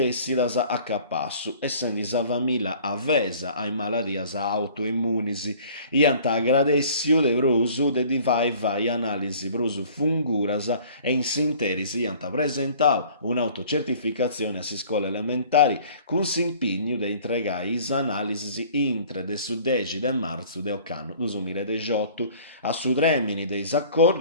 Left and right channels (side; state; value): both; inverted; correlation -0.50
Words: a capassu, essendi sa famiglia avesa ai maladias autoimmunisi, iant agradessiu de brusu de vai analisi brusu funguras e in sinteris iant presentau un'autocertificazione a si scuola elementari cun s'impignu de entregai is analisi intre de su 10 de marzu de occanno 2018 a su tremini dei